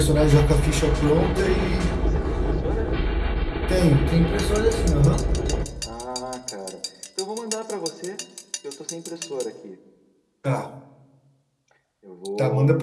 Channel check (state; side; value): identical; both; correlation 1.00